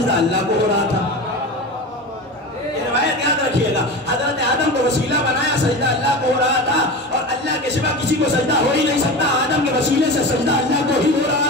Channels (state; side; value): normal; both; correlation 0.28